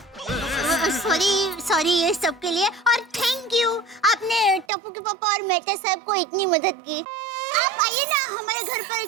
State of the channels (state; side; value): drops out; left; at 4.7 s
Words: सॉरी सॉरी ये सब के लिए, और थैंक यू, आपने टप्पू के पापा और मेहता साहब को इतनी मदद की। आप आइए ना हमारे घर